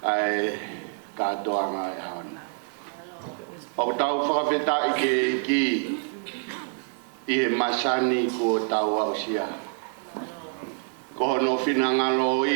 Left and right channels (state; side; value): silent; left; 56 dB below the other